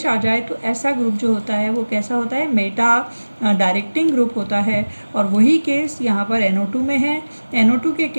आ जाए, तो ऐसा ग्रुप जो होता है वो कैसा होता है, मेटा डायरेक्टिंग ग्रुप होता है। और वही केस यहाँ पर NO2 में है। NO2 के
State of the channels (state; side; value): inverted; both; correlation -1.00